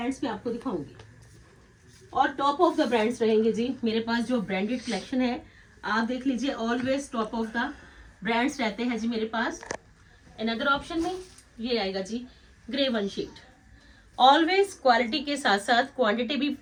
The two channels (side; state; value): both; identical; correlation 1.00